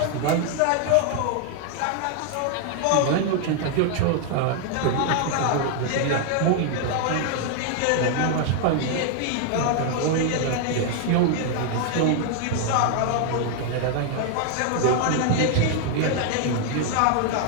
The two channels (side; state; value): both; different; correlation 0.00